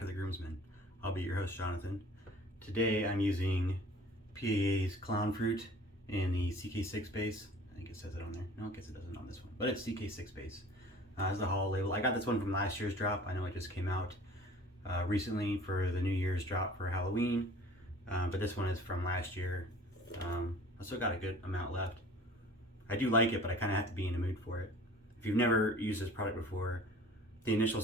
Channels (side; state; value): both; normal; correlation 0.47